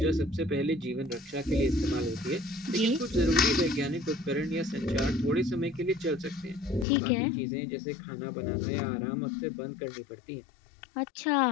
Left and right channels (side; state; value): right; drops out; at 6.9 s